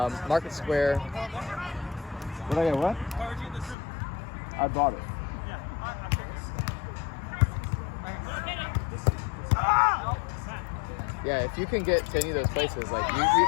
Square. Did I get what? I bought it. Yeah, if you can get to any of those places, like you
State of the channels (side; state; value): right; drops out; at 3.8 s